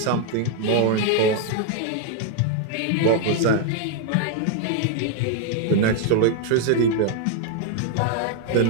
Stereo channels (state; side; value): different; both; correlation 0.00